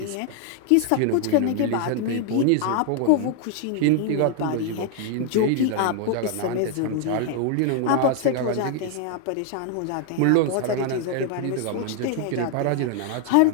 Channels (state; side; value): different; both; correlation 0.00